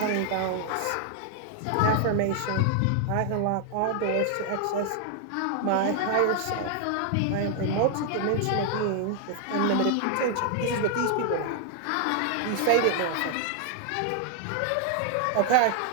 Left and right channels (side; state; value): both; different; correlation 0.00